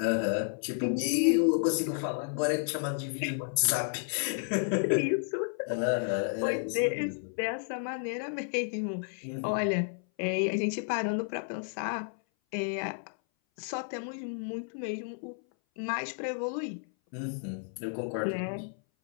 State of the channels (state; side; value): silent; right; 57 dB below the other